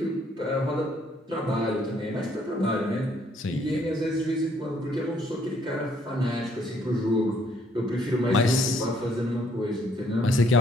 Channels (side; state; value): both; normal; correlation 0.67